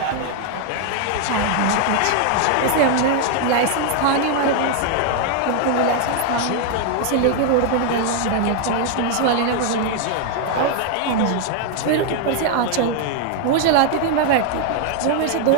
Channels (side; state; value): both; different; correlation 0.00